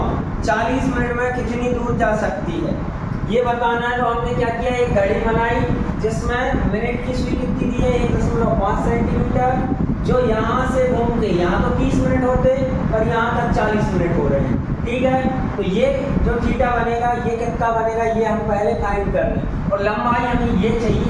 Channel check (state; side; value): identical; both; correlation 1.00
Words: 40 मिनट में कितनी दूर जा सकती है, ये बताना है। तो हमने क्या किया, एक घड़ी बनाई जिसमें मिनट की सुई कितनी दी है 1.5 सेंटीमीटर, जो यहाँ से घूम के यहाँ तो 30 मिनट होते, पर यहाँ तक 40 मिनट हो रहे हैं। ठीक है, तो ये जो थीटा बनेगा ये कितना बनेगा ये हम पहले फाइंड कर लें, और लंबाई हमें ये